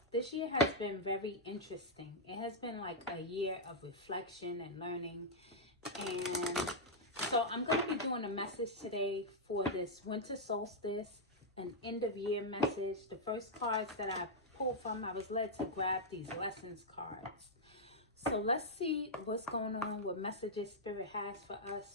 this year has been very interesting. It has been like a year of reflection and learning. And so I'm going to be doing a message today for this winter solstice, an end of year message. The first cards that I pulled from, I was led to grab these lessons cards. So let's see what's going on, what messages Spirit has for us.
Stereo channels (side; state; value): both; normal; correlation -0.05